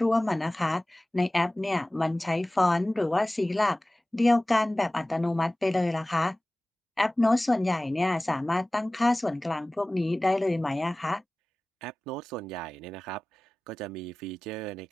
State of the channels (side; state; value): both; normal; correlation 0.98